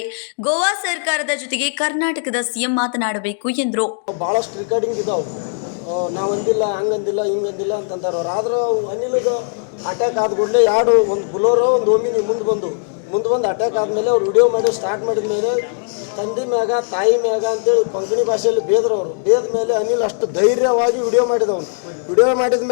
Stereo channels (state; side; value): silent; right; 67 dB below the other